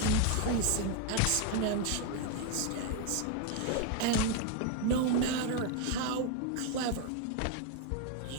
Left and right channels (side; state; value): both; different; correlation 0.01